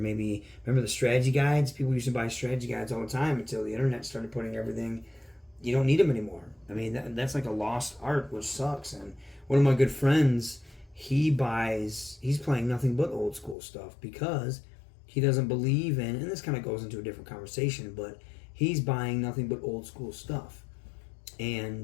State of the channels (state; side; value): drops out; right; at 13.6 s